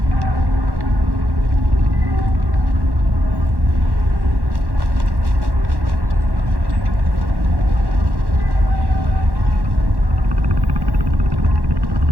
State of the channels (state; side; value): late; left; 1.1 ms